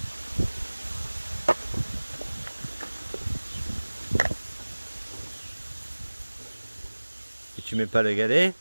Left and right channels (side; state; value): both; inverted; correlation -1.00